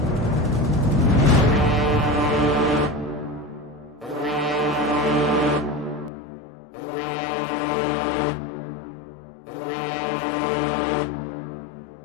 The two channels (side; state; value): right; drops out; at 6.1 s